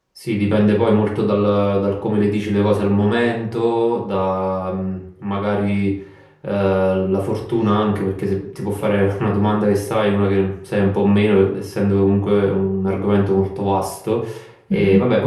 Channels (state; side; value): identical; both; correlation 1.00